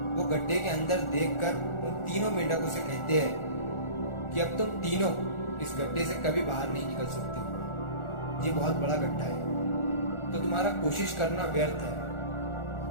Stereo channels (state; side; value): late; right; 1.4 ms